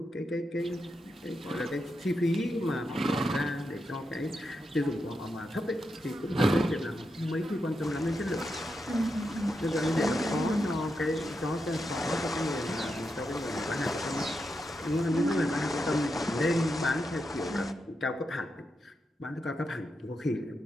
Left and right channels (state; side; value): normal; both; correlation 0.86